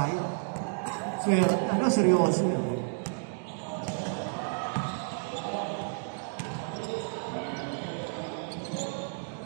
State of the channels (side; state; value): left; silent; digital silence